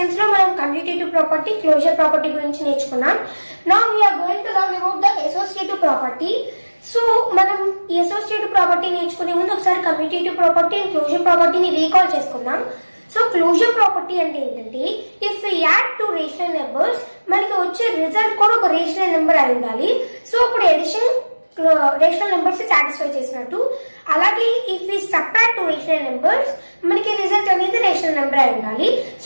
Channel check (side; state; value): both; inverted; correlation -1.00